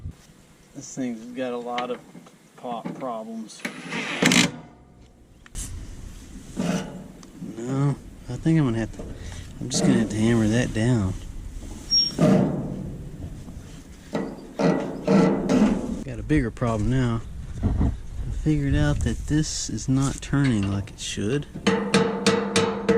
This thing's got a lot of pop problems. No, I think I'm just gonna have to hammer that down. Got a bigger problem now. I figured out that this is not turning like it should.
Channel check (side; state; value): both; identical; correlation 1.00